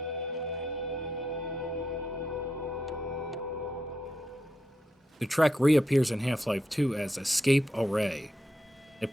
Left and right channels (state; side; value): normal; both; correlation 0.83